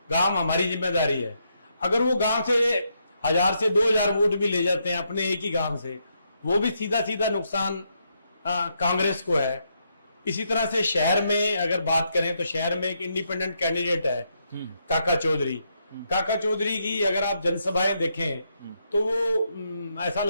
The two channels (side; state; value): both; inverted; correlation -0.78